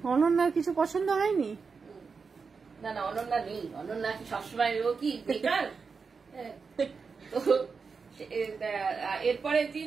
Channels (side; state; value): left; quieter; 5.1 dB